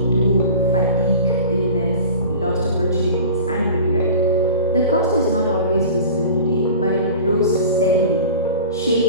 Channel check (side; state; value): both; inverted; correlation -0.38